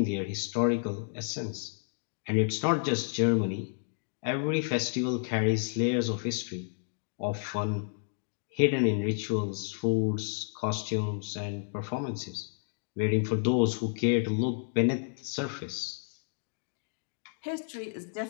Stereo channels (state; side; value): silent; right; digital silence